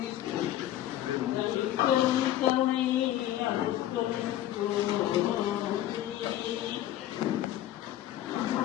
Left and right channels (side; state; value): right; quieter; 13.1 dB